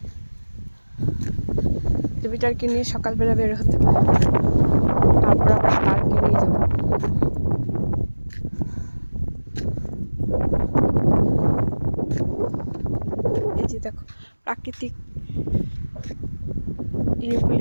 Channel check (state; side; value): inverted; both; correlation -1.00